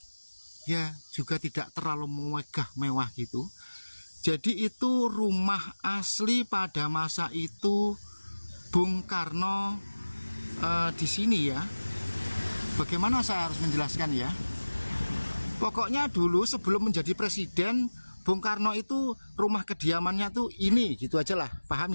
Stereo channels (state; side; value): inverted; both; correlation -1.00